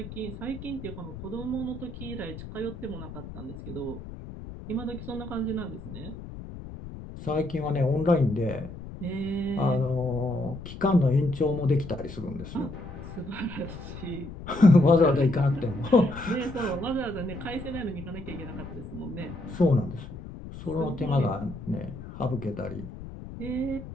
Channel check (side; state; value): left; noise; rumble, 12 dB below the sound